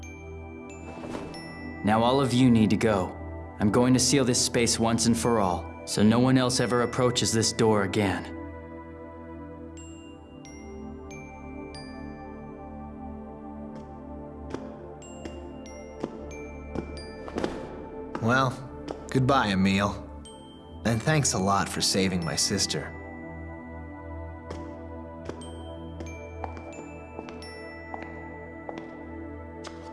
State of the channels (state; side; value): identical; both; correlation 1.00